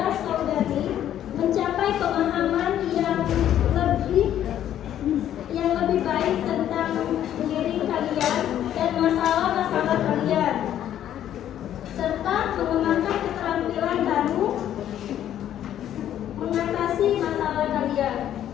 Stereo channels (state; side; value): quieter; right; 11.1 dB